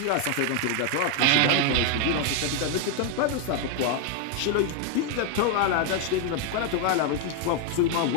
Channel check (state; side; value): different; both; correlation 0.01